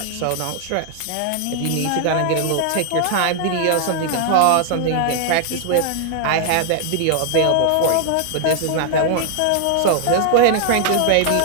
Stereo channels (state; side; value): different; both; correlation 0.00